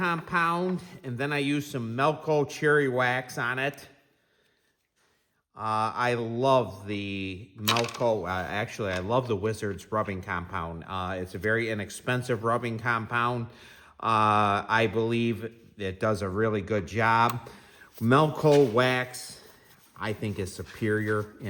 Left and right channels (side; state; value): both; identical; correlation 1.00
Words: and then I used some Melco cherry wax on it. I love the Melco, actually I love the Wizards rubbing compound. It's a very inexpensive rubbing compound. I believe it does a really good job. Melco wax, I think, is superior